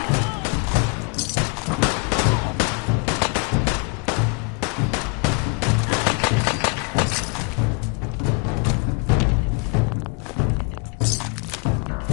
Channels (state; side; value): quieter; right; 34.5 dB